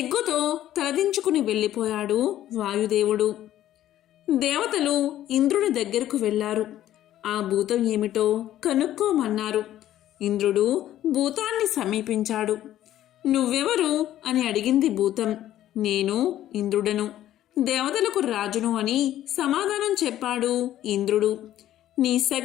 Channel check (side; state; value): right; quieter; 12.7 dB